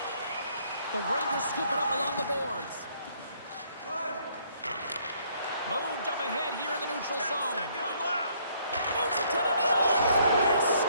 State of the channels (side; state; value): both; inverted; correlation -0.66